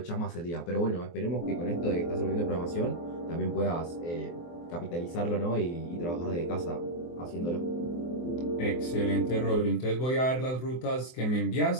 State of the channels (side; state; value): right; late; 23 ms